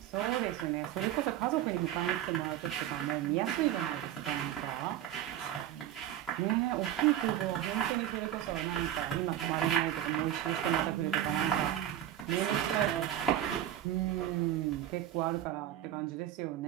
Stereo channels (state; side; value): quieter; left; 11.8 dB